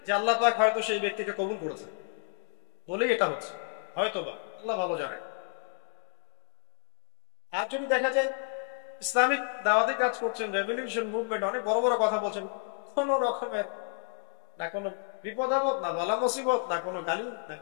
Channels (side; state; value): right; silent; 57 dB below the other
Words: যে আল্লাহ পাক হয়তো সেই ব্যক্তিকে কবুল করেছে, বলেই এটা হচ্ছে, হয়তো বা, আল্লাহ ভালো জানে। আর যদি দেখা যায় ইসলামিক দাওয়াতি কাজ করছেন, রেভলিউশন মুভমেন্ট, অনেক বড় বড় কথা বলছেন, কোন রকমের না কোনো বিপদ আপদ, না বালা মুসিবত, না কোনো গালি, না